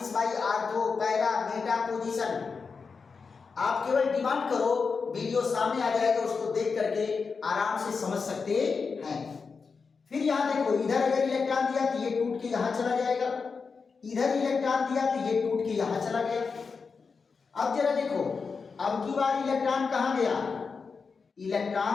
by ortho para Meta position. आप केवल डिमांड करो, वीडियो सामने आ जाएगा, उसको देख करके आराम से समझ सकते हैं। फिर यहां देखो इधर अगर इलेक्ट्रॉन दिया तो ये टूट के यहां चला जाएगा, इधर इलेक्ट्रॉन दिया तो ये टूट के यहां चला गया। अब जरा देखो अब की बार इलेक्ट्रॉन कहां गया,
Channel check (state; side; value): quieter; right; 5.1 dB